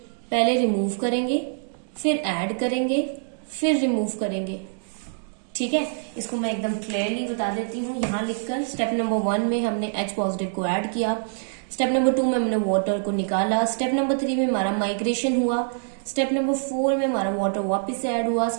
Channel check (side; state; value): left; silent; digital silence